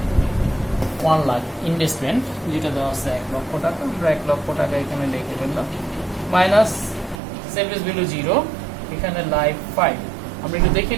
1 লাখ, ইনভেস্টমেন্ট যেটা দেওয়া আছে 1 লক্ষ টাকা, আমরা 1 লক্ষ টাকা এখানে লিখে ফেললাম, মাইনাস সেলভেজ ভ্যালু 0, এখানে লাইফ 5। আমরা একটু দেখে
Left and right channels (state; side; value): drops out; left; at 7.2 s